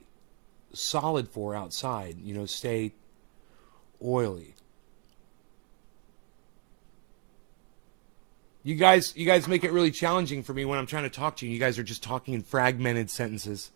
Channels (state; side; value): quieter; left; 39.8 dB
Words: solid for outside, you know, stay oily. You guys make it really challenging for me when I'm trying to talk to you. You guys are just talking in fragmented sentences.